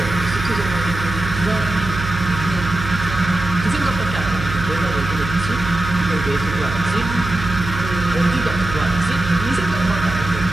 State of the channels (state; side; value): noise; right; hum, 7 dB below the sound